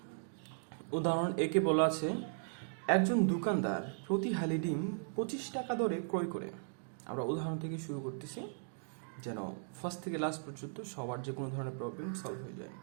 উদাহরণ একে বলা আছে, একজন দোকানদার প্রতি হালি ডিম 25 টাকা দরে ক্রয় করে। আমরা উদাহরণ থেকে শুরু করতেছি যেন ফার্স্ট থেকে লাস্ট পর্যন্ত সবার যে কোনো ধরনের প্রবলেম সলভ হয়ে যায়।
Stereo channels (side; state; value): left; silent; digital silence